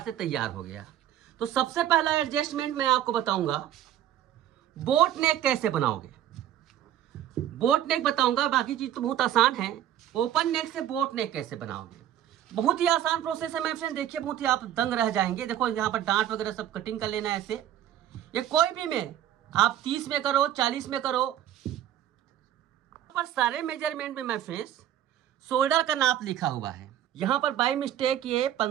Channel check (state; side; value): quieter; left; 11.5 dB